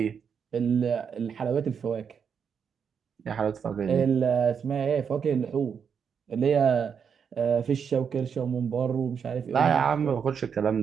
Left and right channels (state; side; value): quieter; left; 6.9 dB